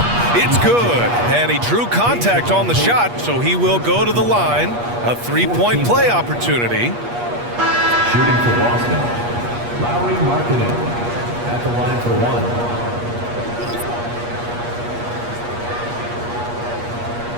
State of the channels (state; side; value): late; left; 8.4 ms